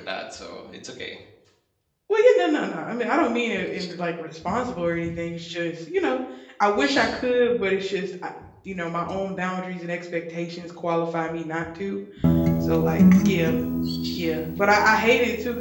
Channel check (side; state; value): both; identical; correlation 1.00